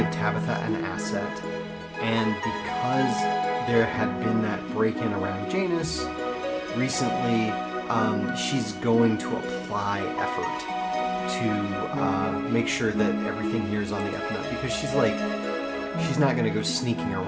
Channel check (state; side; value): identical; both; correlation 1.00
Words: Tabitha an asset, and because there had been that break-in around Janus recently, she's going to apply effort to make sure that everything here is on the up and up, because she's not going to go sneaking